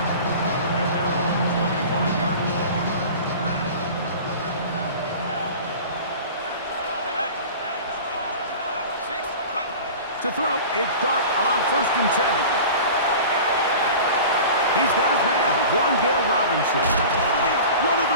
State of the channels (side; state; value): both; inverted; correlation -0.37